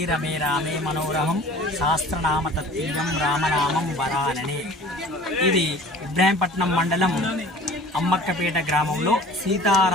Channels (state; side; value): normal; both; correlation 0.46